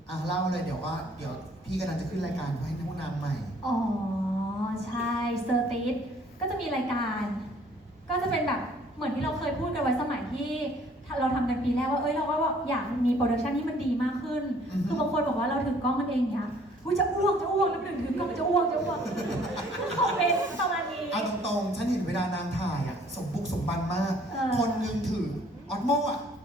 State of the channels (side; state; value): both; normal; correlation 0.58